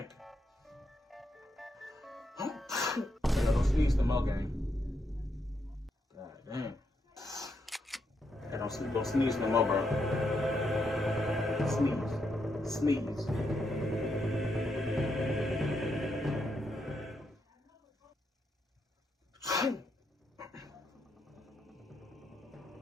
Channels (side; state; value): both; normal; correlation 0.80